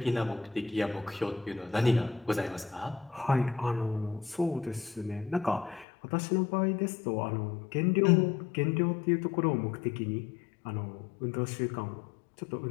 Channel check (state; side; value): drops out; right; at 5.9 s